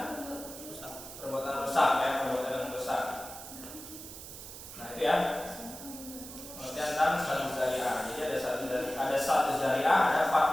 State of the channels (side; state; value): right; noise; hiss, 12 dB below the sound